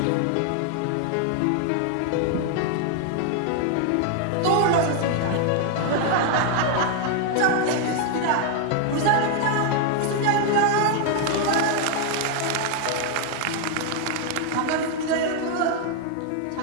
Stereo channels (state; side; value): different; both; correlation 0.00